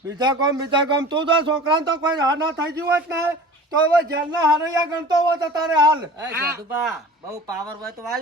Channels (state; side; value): normal; both; correlation 0.40